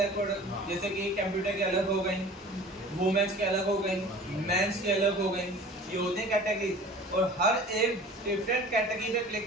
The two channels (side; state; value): both; normal; correlation 0.43